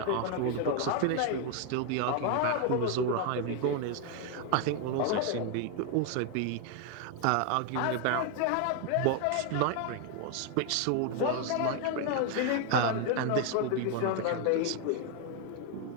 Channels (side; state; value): both; different; correlation 0.01